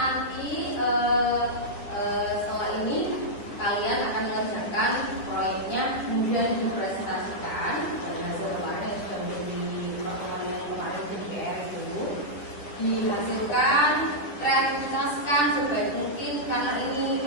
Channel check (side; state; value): right; late; 9.9 ms